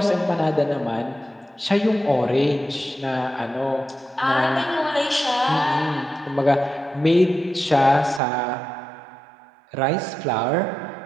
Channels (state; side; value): drops out; left; at 8.2 s